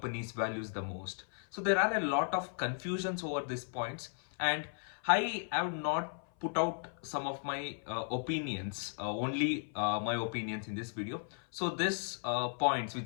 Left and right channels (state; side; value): silent; right; 54 dB below the other